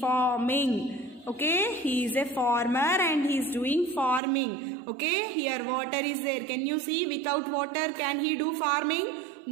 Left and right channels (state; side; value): drops out; left; at 4.2 s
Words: Okay, he is a farmer and he is doing farming. Okay, here water is there. Can you see? Without water, can he do farming?